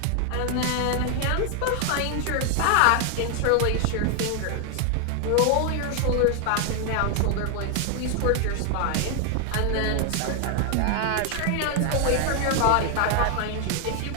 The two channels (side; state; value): both; different; correlation 0.00